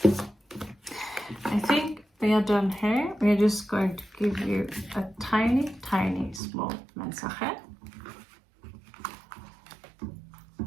I think we are done here. We're just going to give you a tiny small message,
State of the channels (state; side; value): drops out; left; at 6.4 s